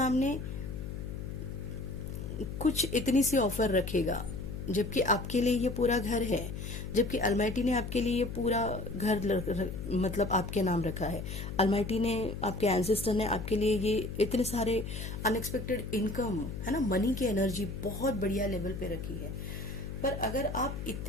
कुछ इतनी सी ऑफर रखेगा, जबकि आपके लिए ये पूरा घर है, जबकि अलमाइटी ने आपके लिए ये पूरा घर मतलब आपके नाम रखा है। अलमाइटी ने, आपके एंसेस्टर ने आपके लिए ये इतने सारे अनएक्सपेक्टेड इनकम है ना, मनी की एनर्जी बहुत बढ़िया लेवल पे रखी है। पर अगर आप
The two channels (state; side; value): noise; left; hum, 7 dB below the sound